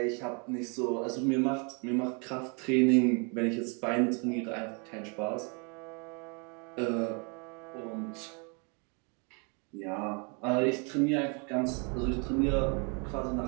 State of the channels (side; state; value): left; quieter; 35.3 dB